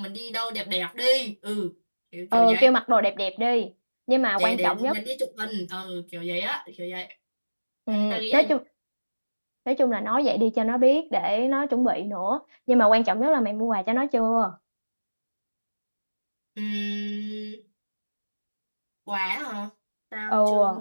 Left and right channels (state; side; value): inverted; both; correlation -1.00